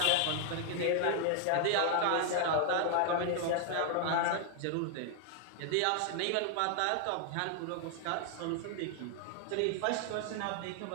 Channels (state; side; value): different; both; correlation 0.00